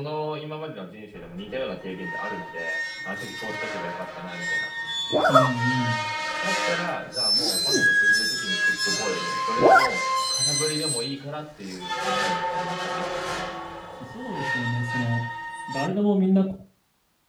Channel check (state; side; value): identical; both; correlation 1.00